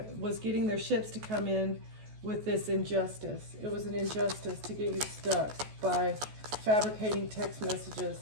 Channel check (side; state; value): left; late; 14 ms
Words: getting their ships to come in with this injustice. It was an injustice to get you stuck by fabricating text messages,